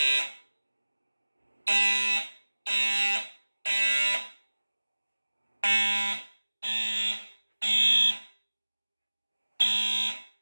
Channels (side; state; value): both; inverted; correlation -1.00